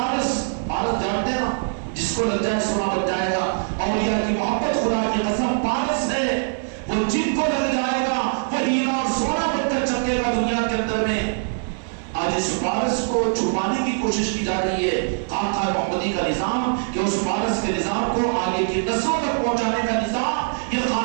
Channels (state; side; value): silent; left; digital silence